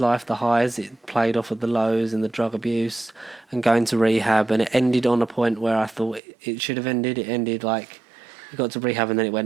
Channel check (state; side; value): drops out; left; at 6.2 s